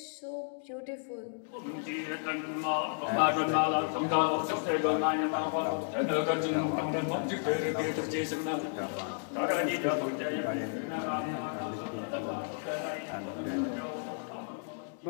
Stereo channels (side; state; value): right; silent; digital silence